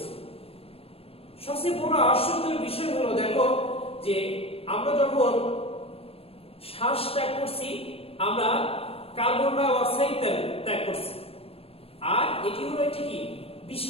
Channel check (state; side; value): late; right; 0.28 ms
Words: সবচেয়ে বড় আশ্চর্যের বিষয় হলো দেখো যে আমরা যখন শ্বাস ত্যাগ করছি, আমরা কার্বন ডাই অক্সাইড ত্যাগ করছি, আর এটি হলো একটি কি?